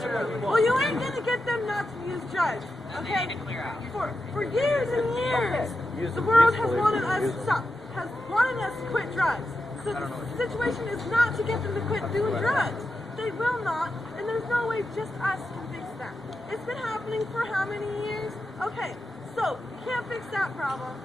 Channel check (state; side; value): normal; both; correlation 0.89